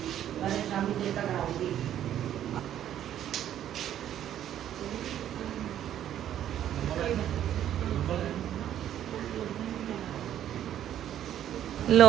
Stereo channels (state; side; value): quieter; left; 11.0 dB